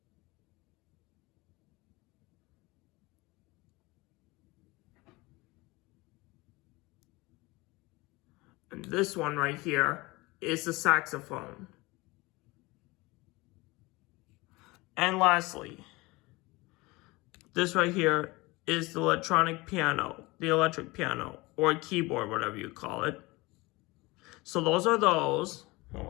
And this one right here is the saxophone. And lastly, this right here is the electric piano, or keyboard, whatever you call it. So those are those. I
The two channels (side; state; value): right; quieter; 22.8 dB